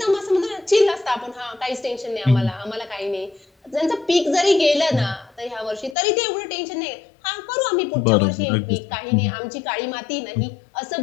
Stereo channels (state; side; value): drops out; right; at 6.0 s